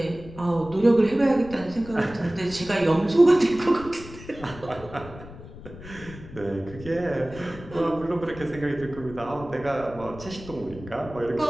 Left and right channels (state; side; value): noise; left; rumble, 15 dB below the sound